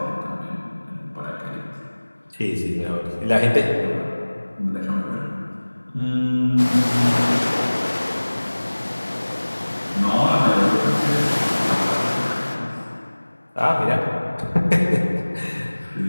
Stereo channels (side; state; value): both; inverted; correlation -1.00